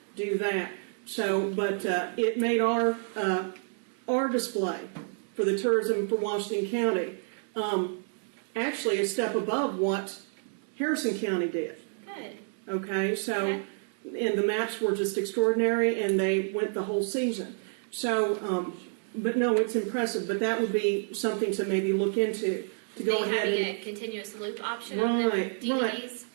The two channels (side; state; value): left; silent; 58 dB below the other